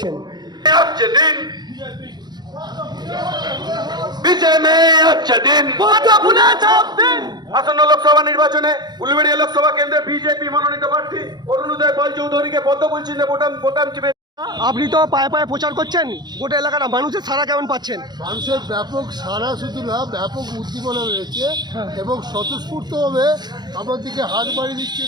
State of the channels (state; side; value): late; left; 0.20 ms